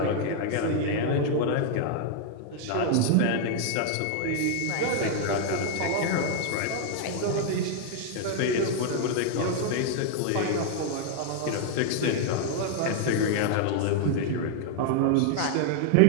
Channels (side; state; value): both; different; correlation 0.00